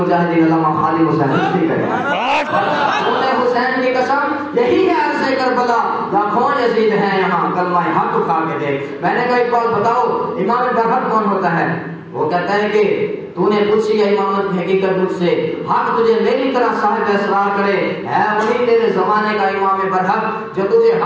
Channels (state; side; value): identical; both; correlation 1.00